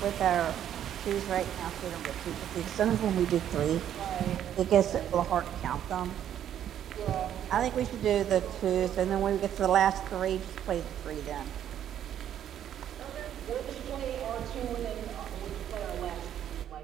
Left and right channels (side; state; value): left; quieter; 10.4 dB